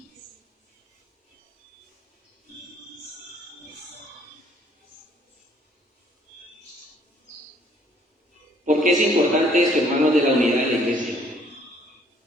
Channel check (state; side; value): normal; both; correlation 0.62